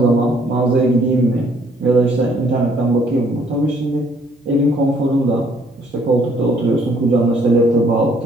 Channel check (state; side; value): normal; both; correlation 0.64